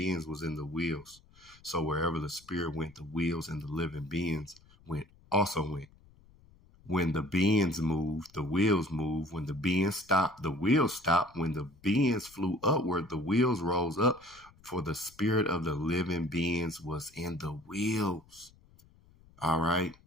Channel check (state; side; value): noise; left; rumble, 27 dB below the sound